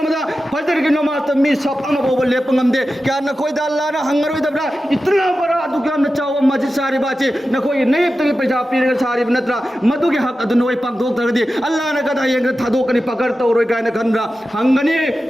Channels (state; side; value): normal; both; correlation 0.93